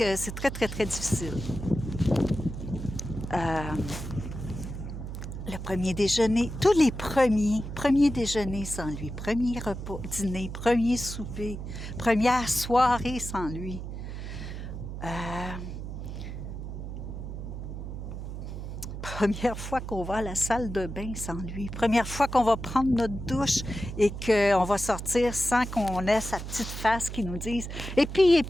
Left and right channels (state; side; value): noise; right; hum, 7 dB below the sound